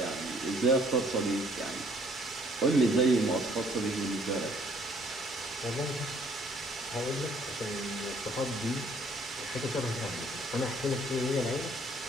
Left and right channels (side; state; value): both; normal; correlation 0.62